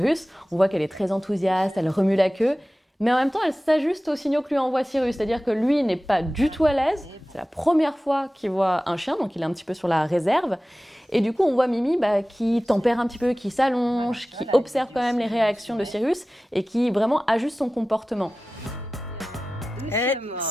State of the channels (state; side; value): normal; both; correlation 0.96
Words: On voit qu'elle est très enthousiaste, elle remue la queue, mais en même temps elle s'ajuste aux signaux que lui envoie Sirius, c'est-à-dire que lui n'est pas du tout à l'aise. C'est la première fois qu'il voit un chien, donc il est un petit peu sur la réserve. Et du coup, on voit Mimi qui tempère un petit peu, qui s'allonge, qui observe quand même les réactions de Sirius et qui vraiment ajuste son comportement.